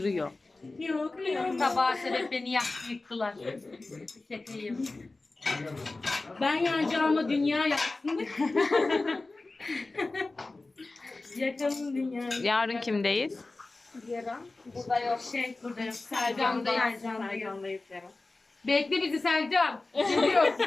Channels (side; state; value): right; quieter; 3.3 dB